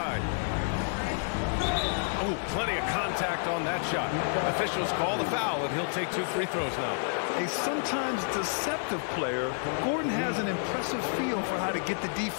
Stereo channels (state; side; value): silent; right; digital silence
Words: Oh, plenty of contact on that shot. Officials call the foul, and he'll take 2 free throws now. A sometimes deceptive player, Gordon has an impressive feel for how to get the